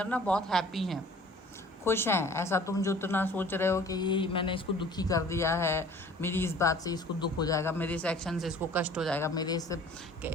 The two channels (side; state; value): both; normal; correlation 0.49